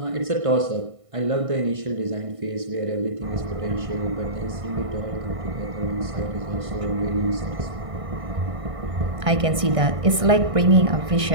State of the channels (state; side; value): late; left; 1.5 ms